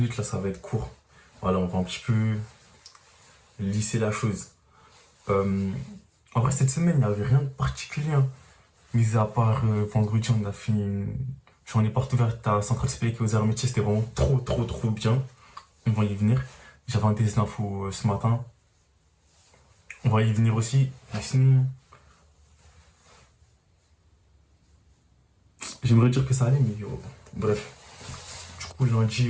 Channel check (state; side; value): identical; both; correlation 1.00